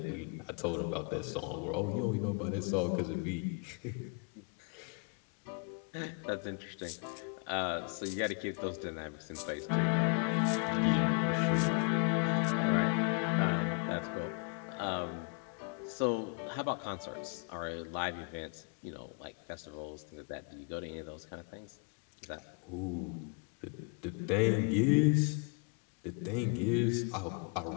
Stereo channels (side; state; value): right; quieter; 36.8 dB